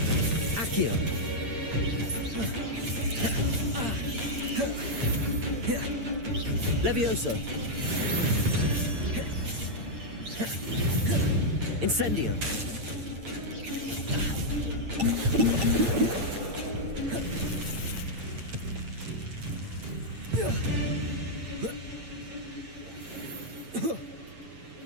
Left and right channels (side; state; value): left; late; 8.8 ms